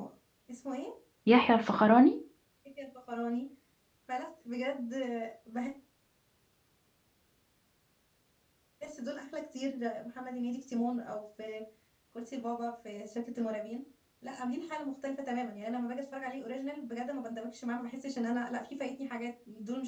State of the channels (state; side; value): identical; both; correlation 1.00